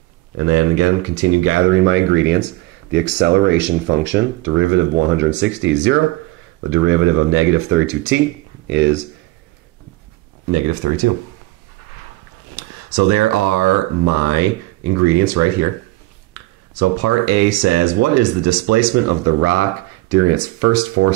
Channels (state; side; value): quieter; left; 19.1 dB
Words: And then again, continue gathering my ingredients. The acceleration function, derivative of 160 is 0. The derivative of negative 32t is negative 32. So there are my ingredients right here. So part A says, what is the displacement of the rock during its first 4